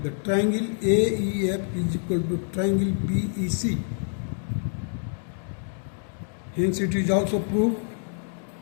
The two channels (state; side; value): silent; right; 61 dB below the other